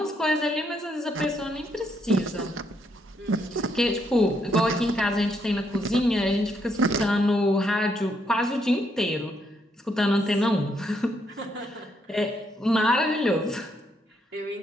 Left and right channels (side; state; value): both; normal; correlation 0.75